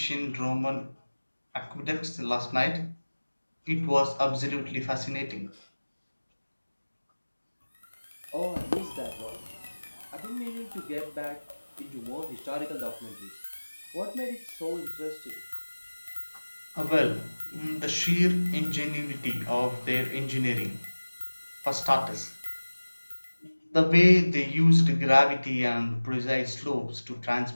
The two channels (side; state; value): both; inverted; correlation -1.00